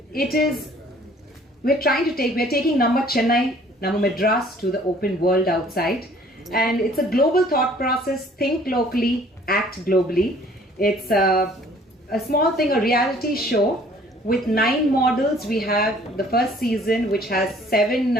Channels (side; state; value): both; normal; correlation 0.56